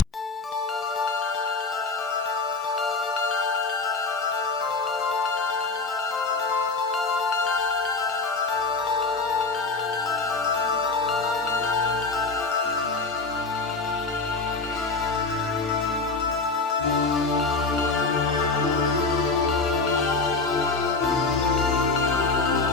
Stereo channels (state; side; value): quieter; right; 3.9 dB